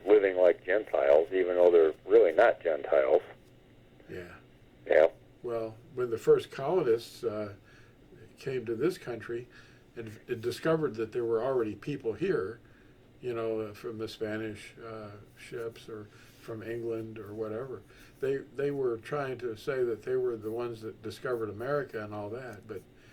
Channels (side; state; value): both; identical; correlation 1.00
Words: living like Gentiles, even though they're really not Gentiles. Yeah. Yeah. Well, when the first colonists came to this country and discovered that there were already people here, from the Spanish ships or from England or whatever, they were trying to say that they were the ones that discovered America and all that, but